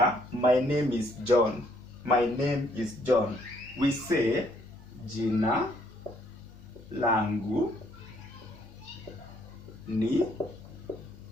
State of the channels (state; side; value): noise; right; rumble, 27 dB below the sound